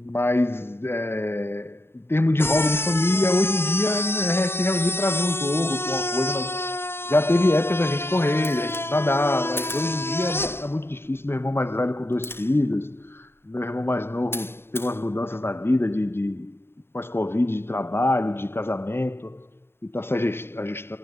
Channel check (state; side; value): late; right; 0.11 ms